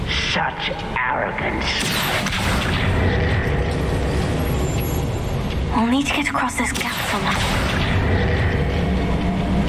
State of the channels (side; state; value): both; identical; correlation 1.00